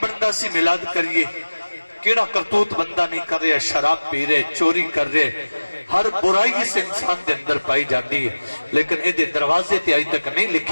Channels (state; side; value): inverted; both; correlation -1.00